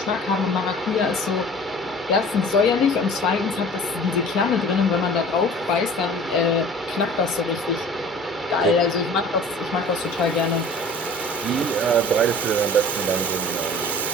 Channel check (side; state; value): both; normal; correlation 0.44